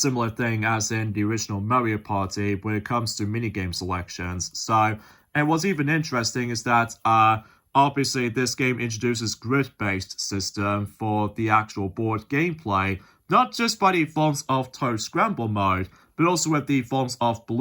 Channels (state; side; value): identical; both; correlation 1.00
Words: thing as in the original Mario Party when it comes to minigame selections. So, and what's even interesting is that, obviously, this game introduces grid-based system for the actual board gameplay, not just by the forms of Toad Scramble mode, but also with the forms of